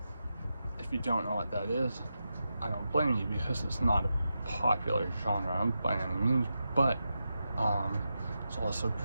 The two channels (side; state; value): both; inverted; correlation -0.89